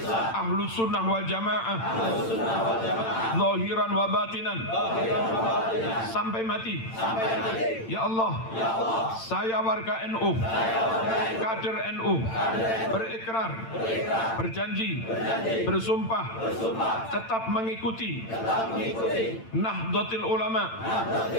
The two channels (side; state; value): right; late; 8.9 ms